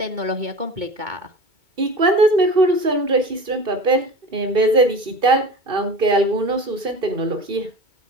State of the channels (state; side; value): late; left; 2.7 ms